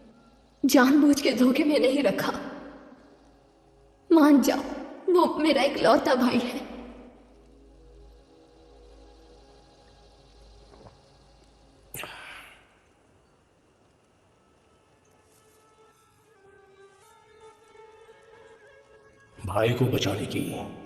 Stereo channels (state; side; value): identical; both; correlation 1.00